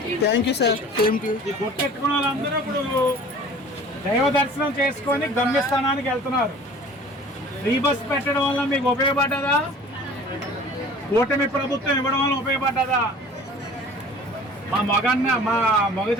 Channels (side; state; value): both; normal; correlation 0.46